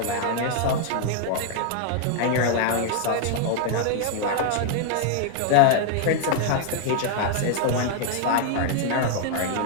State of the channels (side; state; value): both; different; correlation 0.00